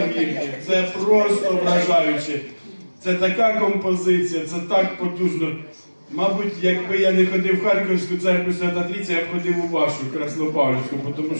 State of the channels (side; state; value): both; inverted; correlation -1.00